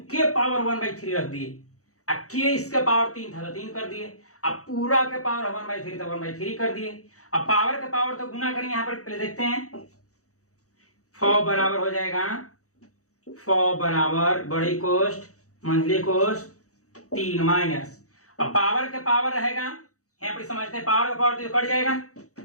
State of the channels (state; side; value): late; right; 0.65 ms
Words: के पावर 1/3 रख दिए, के इसका पावर 3 था तो 3 कर दिए, अब पूरा के पावर 1/3 तो 1/3 कर दिए। अब पावर के पावर तो गुना करेंगे, यहां पर पहले देखते हैं। 4 बराबर हो जाएगा 4 बराबर बड़ी कोष्ट मंझली कोष्ट 3 माइनस, अब पावर के पावर रहेगा यहाँ पर समझते हैं, पावर का पावर तो कट जाएगा,